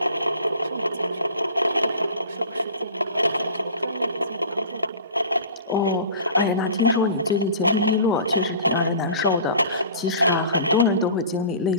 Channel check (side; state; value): both; inverted; correlation -0.41